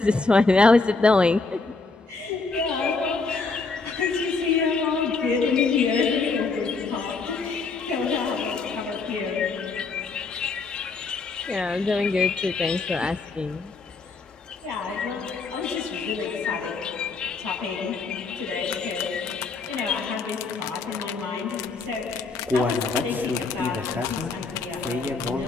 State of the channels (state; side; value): quieter; right; 4.1 dB